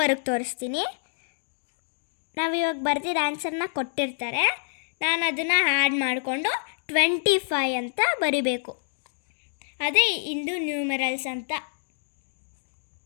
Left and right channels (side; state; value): right; silent; digital silence